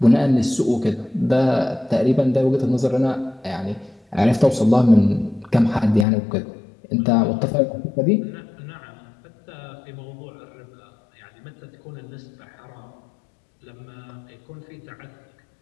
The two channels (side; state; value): right; drops out; at 6.1 s